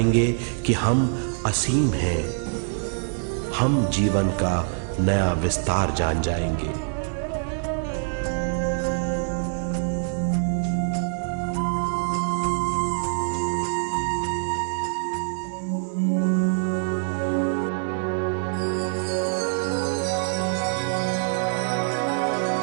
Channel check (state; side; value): silent; left; digital silence